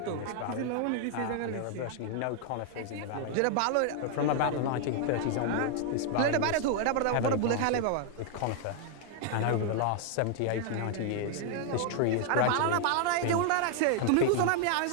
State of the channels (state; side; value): different; both; correlation 0.00